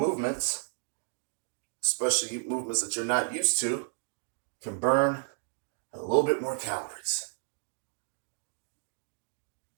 especially movements that you're not used to, can burn a little bit more calories.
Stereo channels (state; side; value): silent; left; digital silence